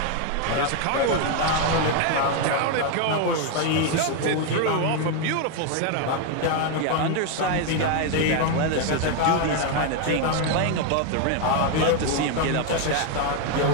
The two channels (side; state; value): both; different; correlation 0.01